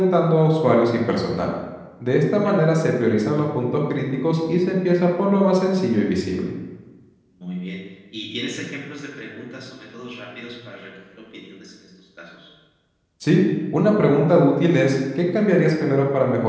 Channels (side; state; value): both; identical; correlation 1.00